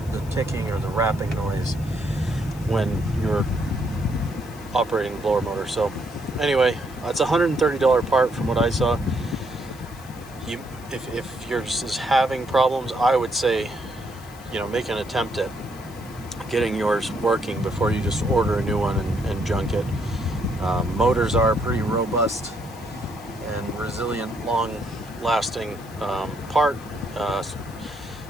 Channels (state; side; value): noise; left; hiss, 22 dB below the sound